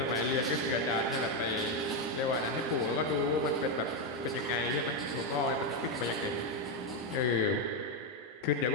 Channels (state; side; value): normal; both; correlation 0.06